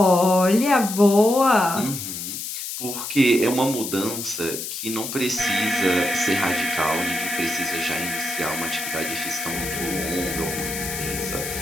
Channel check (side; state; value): left; noise; hiss, 6 dB below the sound